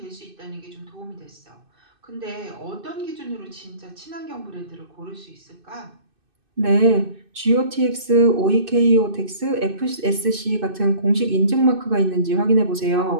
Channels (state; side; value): late; left; 2.6 ms